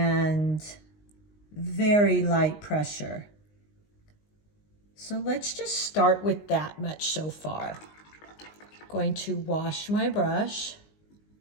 very light pressure. So let's just start with that much so far. Going to wash my brush,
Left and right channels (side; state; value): right; late; 19 ms